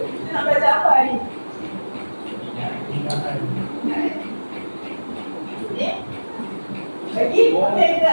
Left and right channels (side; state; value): both; inverted; correlation -1.00